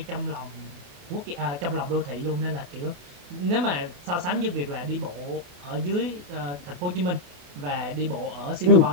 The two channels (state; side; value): late; left; 28 ms